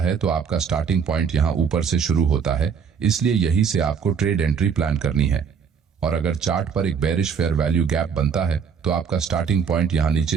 है तो आपका स्टार्टिंग पॉइंट यहां ऊपर से शुरू होता है, इसलिए यही से आपको ट्रेड एंट्री प्लान करनी है। और अगर चार्ट पर एक बेरिश फेयर वैल्यू गैप बनता है तो आपका स्टार्टिंग पॉइंट यहां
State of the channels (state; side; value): quieter; left; 6.6 dB